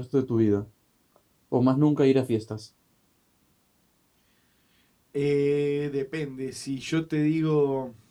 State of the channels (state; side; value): identical; both; correlation 1.00